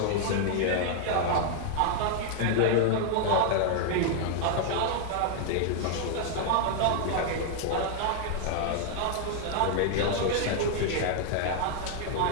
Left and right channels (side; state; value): both; different; correlation 0.00